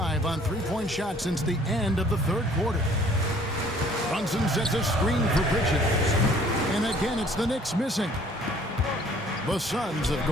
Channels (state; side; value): normal; both; correlation 0.57